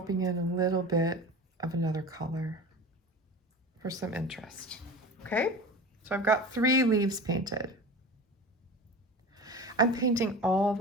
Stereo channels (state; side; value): normal; both; correlation 0.33